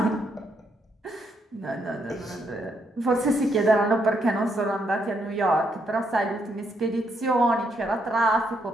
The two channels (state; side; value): normal; both; correlation 0.76